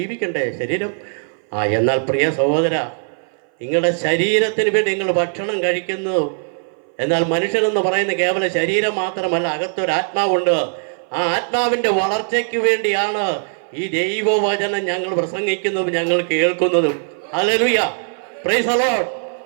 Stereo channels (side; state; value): left; silent; 59 dB below the other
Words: ശരീരം. എന്നാൽ പ്രിയ സഹോദര, നിങ്ങളുടെ ശരീരത്തിന് വേണ്ടി നിങ്ങൾ ഭക്ഷണം കഴിക്കുന്നു. എന്നാൽ മനുഷ്യനെന്ന് പറയുന്ന കേവല ശരീരം മാത്രമല്ല, അകത്തൊരു ആത്മാവുണ്ട്. ആ ആത്മാവിൻ്റെ വളർച്ചയ്ക്ക് വേണ്ടിയാണ് ഈ ദൈവവചനം ഞങ്ങൾ പ്രസംഗിക്കുന്നതും ഞങ്ങൾ കേൾക്കുന്നതും. Hallelujah, price the Lord.